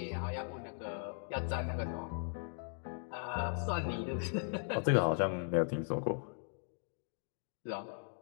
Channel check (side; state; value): right; silent; 52 dB below the other